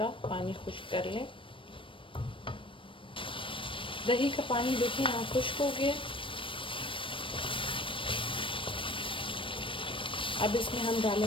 पानी खुश्क कर लें। दही का पानी देखिए यहाँ खुश्क हो गया। अब इसमें हम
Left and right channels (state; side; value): late; right; 0.25 ms